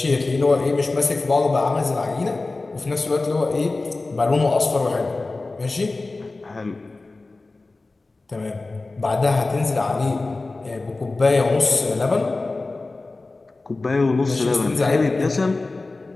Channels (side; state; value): right; quieter; 3.4 dB